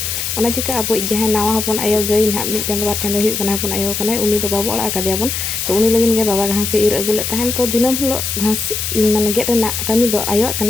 ओना चिका अब जहां नावा हपन आयो गई ना मिट चंद बार चंद हुई कना हपन आयो कना उनी तो बाबू ओड़ा का दियाबन तो उनी लगिन गे बाबा घास इर अगुले तहन तो दिनम हलो घास माने गेट रेना कमी दो आयो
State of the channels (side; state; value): left; noise; hiss, 3 dB below the sound